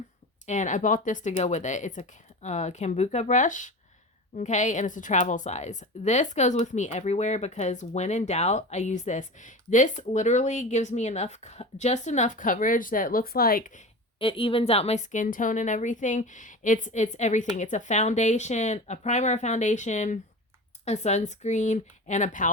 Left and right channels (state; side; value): normal; both; correlation 0.31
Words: And I bought this to go with it. It's a Kambuka brush. Okay, and it's a travel size. This goes with me everywhere because when in doubt, I use this. This literally gives me just enough coverage that it looks like it evens out my skin tone and everything. It's everything. It's a foundation, a primer, foundation, a sunscreen, and a